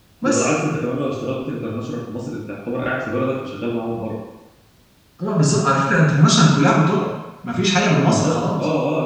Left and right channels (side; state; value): both; identical; correlation 1.00